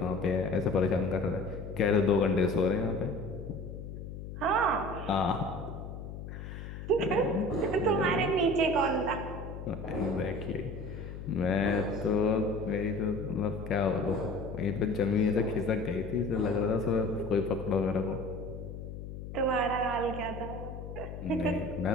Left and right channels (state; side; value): noise; left; hum, 9 dB below the sound